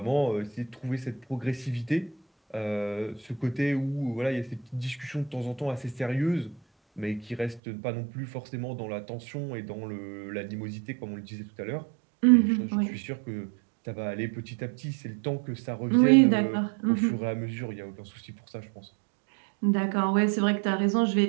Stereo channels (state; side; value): drops out; left; at 7.6 s